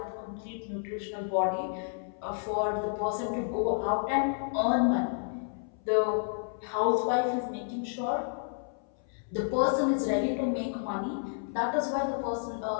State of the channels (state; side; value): silent; right; 57 dB below the other